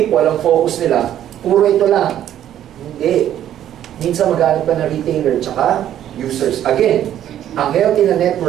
ang focus nila, puro ito lang. Hindi. Minsan maghanap ka na retailer tsaka users. Again, ang healthy na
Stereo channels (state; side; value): quieter; left; 11.2 dB